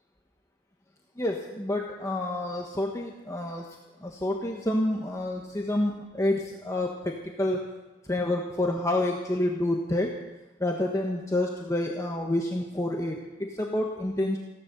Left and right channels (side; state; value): both; normal; correlation 0.74